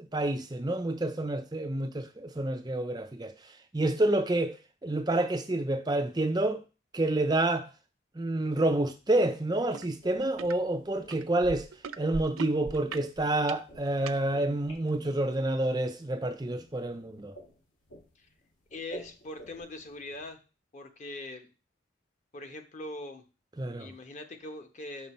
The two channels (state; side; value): normal; both; correlation 0.69